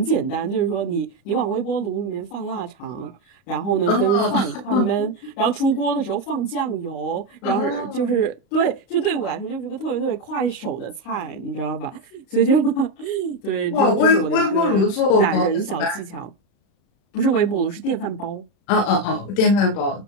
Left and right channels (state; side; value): late; right; 36 ms